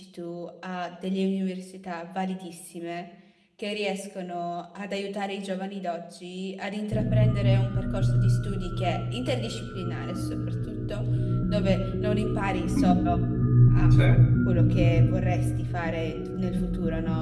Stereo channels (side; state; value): both; identical; correlation 1.00